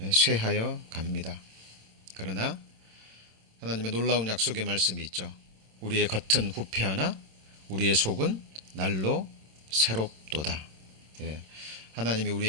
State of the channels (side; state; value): left; late; 26 ms